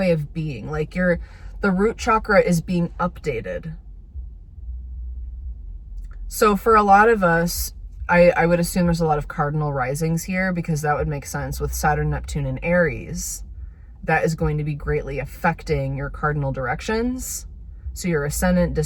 of being. Like the root chakra is being updated. So for a lot of us, I would assume there's a lot of cardinal risings here because that would make sense with Saturn, Neptune, and Aries. That is going to be greatly affecting your cardinal directions. So your ascendant,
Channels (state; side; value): identical; both; correlation 1.00